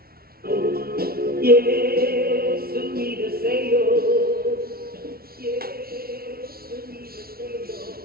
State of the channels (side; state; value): left; late; 0.44 ms